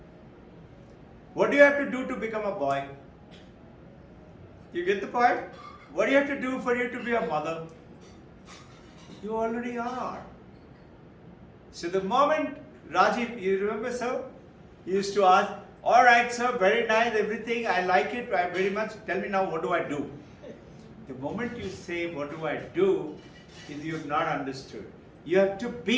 What do you have to do to become a boy? You get the point? What do you have to do for you to be a mother? You already are. So the moment Rajiv, you remember sir? He used to ask, all right sir, very nice, everything, I like it very much. Tell me now, what do I do? The moment you say, what do I do, is you have not understood. You have to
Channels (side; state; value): both; identical; correlation 1.00